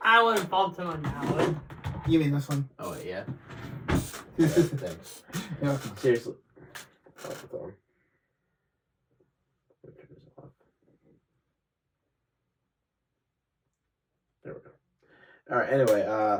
I would bump him on that one. You mean this one? Oh, wait, yeah? Thanks. Yeah. Seriously. Oh, it's on. There we go. Alright, anyway,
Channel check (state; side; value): identical; both; correlation 1.00